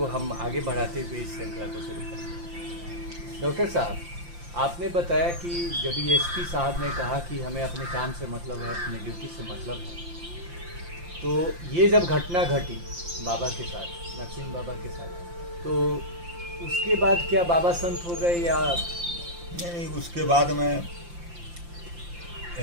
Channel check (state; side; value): late; left; 5.8 ms